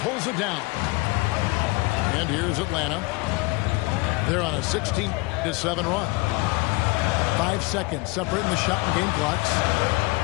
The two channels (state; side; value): quieter; right; 26.0 dB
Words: it down. And here's Atlanta. They're on a 16-7 run. 5 seconds separating the shot and game clocks.